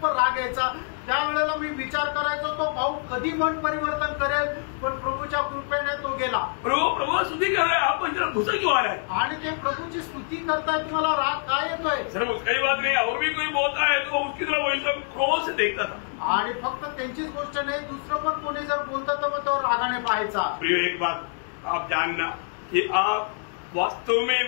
राग यायचा. त्यावेळेला मी विचार करायचो तो भाऊ कधी मन परिवर्तन करेल, पण प्रभूच्या कृपेने तो गेला. प्रभु स्तुति कर रहे हैं, आपको इतना गुस्सा क्यों आ रहा है? आणि ते प्रभूची स्तुती करताय, तुम्हाला राग काय येतोय? सर कई बात नहीं, और भी कोई बोलता है तो उसकी तरफ वही सब क्रोध से देखता था. आणि फक्त त्यांचीच गोष्ट नाही, दुसरं पण कोणी जर बोलतं तर मग तो रागाने पाहायचा. प्रिय एक बात आप जानना कि आप वास्तव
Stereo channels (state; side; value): silent; right; 61 dB below the other